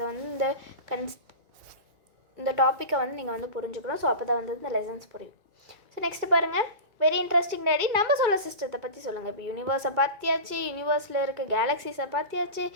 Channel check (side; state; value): left; late; 2.2 ms